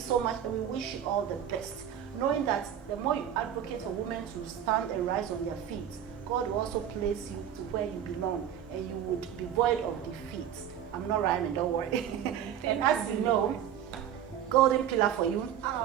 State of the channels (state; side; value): quieter; left; 9.7 dB